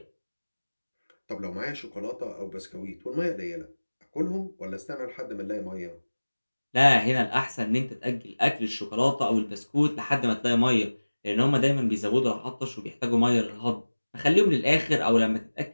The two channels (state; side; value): inverted; both; correlation -1.00